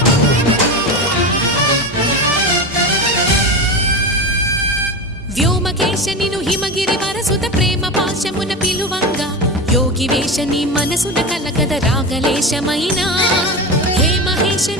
వ్యోమకేశనిను హిమగిరి వరసుత ప్రేమ పాశమున పిలువంగా యోగి వేషని మనసున కలకద రాగలేశమైనా హే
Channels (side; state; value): both; normal; correlation 0.22